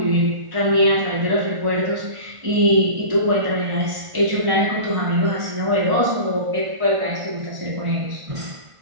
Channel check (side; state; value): left; late; 1.5 ms